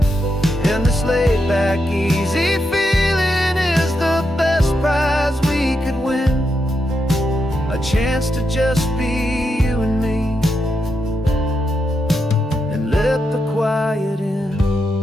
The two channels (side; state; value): both; normal; correlation 0.84